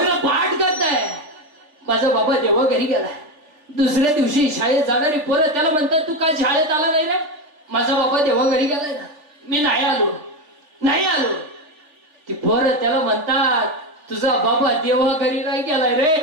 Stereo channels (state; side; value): late; left; 3.4 ms